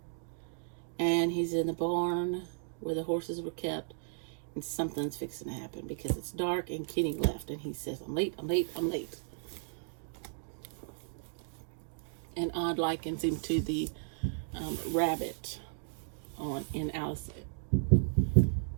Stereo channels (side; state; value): left; silent; digital silence